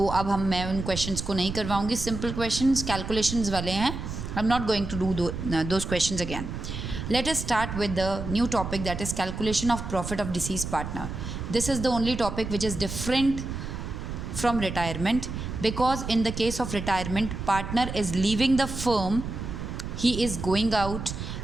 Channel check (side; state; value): right; noise; rumble, 6 dB below the sound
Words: अब मैं उन questions को नहीं करवाऊंगी. Simple questions calculations वाले हैं. I am not going to do those questions again. Let us start with the new topic, that is calculation of profit of deceased partner. This is the only topic which is different from retirement, because in the case of retirement, partner is leaving the firm, he is going out,